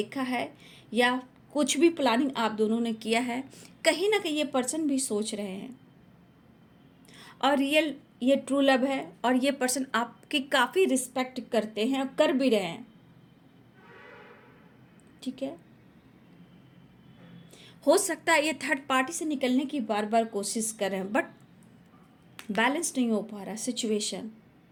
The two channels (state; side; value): identical; both; correlation 1.00